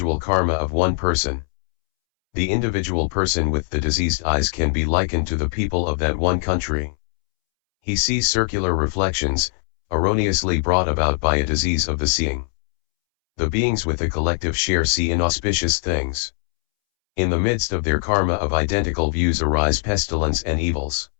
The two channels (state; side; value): silent; right; 65 dB below the other